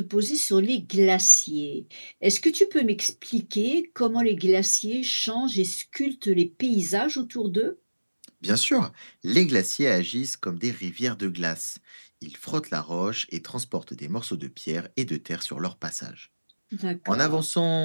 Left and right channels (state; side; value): inverted; both; correlation -1.00